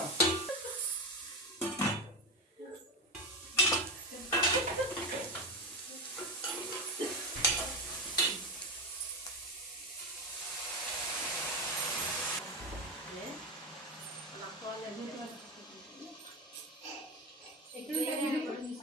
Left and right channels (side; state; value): both; normal; correlation 0.17